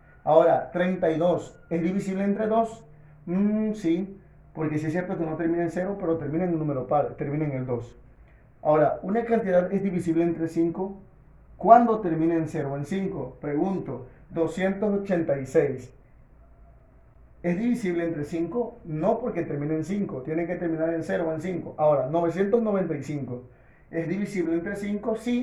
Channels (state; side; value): identical; both; correlation 1.00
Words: Ahora, 32 es divisible entre 2? Sí, porque sí es cierto que no termina en 0, pero termina en un número par, termina en el 2. Ahora, ¿una cantidad es divisible entre 5? ¿Cuándo termina en 0 o en 5? Pregunto, 286. ¿Es divisible entre 5? No, porque termina en 5. Tiene que terminar en 0 o en 5. Ahora, 995. ¿Es divisible entre 5?